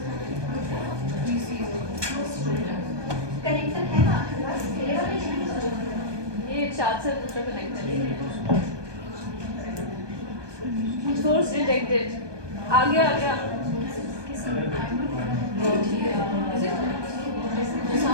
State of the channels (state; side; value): late; left; 1.2 ms